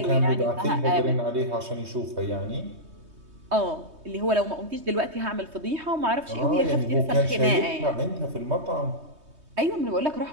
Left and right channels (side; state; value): left; late; 3.2 ms